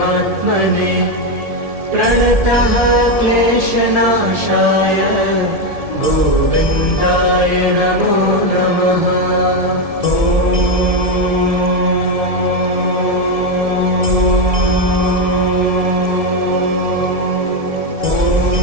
प्रणतः क्लेशनाशाय गोविन्दाय नमो नमः।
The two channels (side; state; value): left; late; 1.7 ms